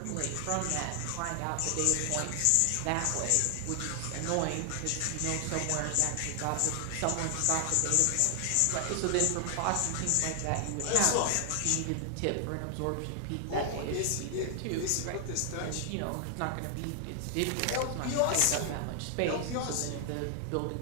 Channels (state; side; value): different; both; correlation 0.00